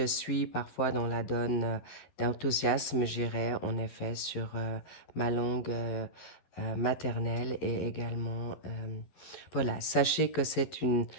suis parfois dans la donne d'enthousiasme, j'irai en effet sur ma langue maternelle et également, voilà, sachez que c'est une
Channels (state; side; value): late; right; 11 ms